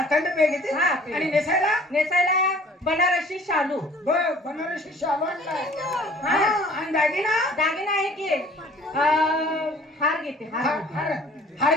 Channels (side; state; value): both; normal; correlation 0.52